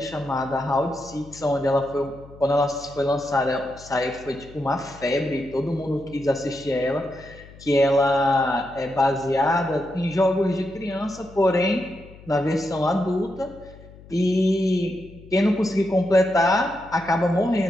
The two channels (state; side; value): noise; left; hum, 20 dB below the sound